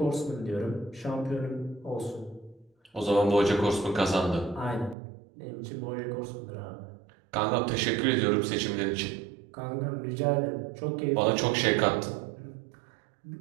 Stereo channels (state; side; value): drops out; left; at 5.0 s